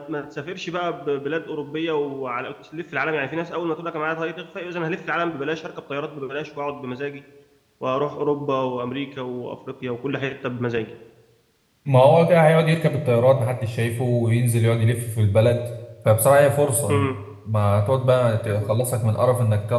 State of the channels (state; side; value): identical; both; correlation 1.00